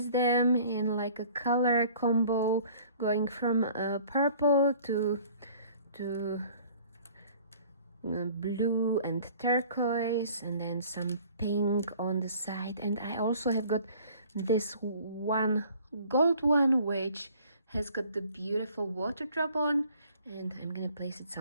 them in like a color combo, going from purple to blue and turquoise, and then some pink on the side. And I also have got this one gold one which has got the beautiful water drop on, and I'm gonna place it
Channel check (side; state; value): both; inverted; correlation -0.52